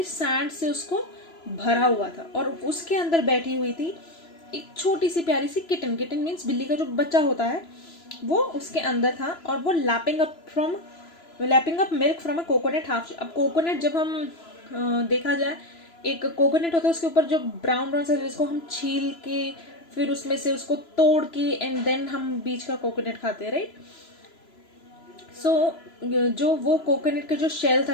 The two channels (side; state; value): right; late; 3.0 ms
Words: सैंड से उसको भरा हुआ था, और उसके अंदर बैठी हुई थी एक छोटी सी प्यारी सी किटन. किटन मीन्स बिल्ली का जो बच्चा होता है, वो उसके अंदर था. और वो lapping up milk from a coconut half. अब कोकोनट जब हम देखा जाए, एक कोकोनट होता है, उसके ऊपर जो ब्राउन ब्राउन सा, जिसको हम छील के फिर उसमें से उसको तोड़ के एंड देन हम बीच का कोकोनट खाते हैं, राइट. सो जो वो कोकोनट का जो शेल